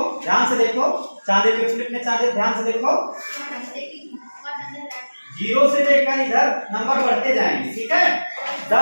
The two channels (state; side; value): inverted; both; correlation -1.00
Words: ध्यान से देखो, चांदे पे उलटने, चांदे ध्यान से देखो, 0 से लेकर इधर नंबर बढ़ते जाएंगे, ठीक है।